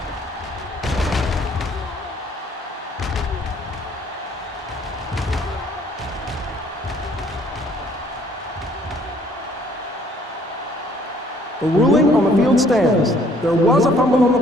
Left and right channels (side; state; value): both; normal; correlation 0.61